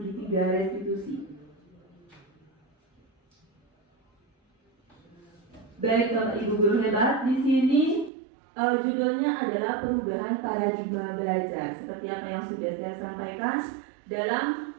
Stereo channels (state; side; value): drops out; left; at 8.1 s